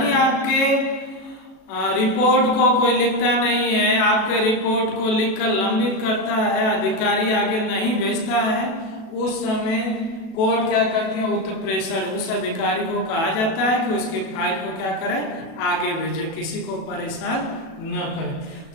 आपके रिपोर्ट को कोई लिखता नहीं है, आपके रिपोर्ट को लिखकर लंबित करता है, अधिकारी आगे नहीं भेजता है, उस समय कोर्ट क्या करती है? उत्प्रेषण। उस अधिकारी को कहा जाता है कि उसके फाइल को क्या करें? आगे भेजे, किसी को परेशान न करें।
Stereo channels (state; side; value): late; right; 37 ms